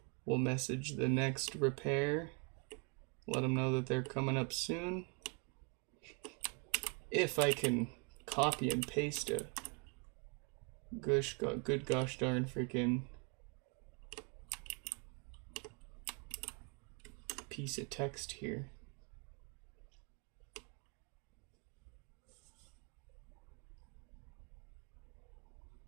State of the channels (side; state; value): left; quieter; 34.2 dB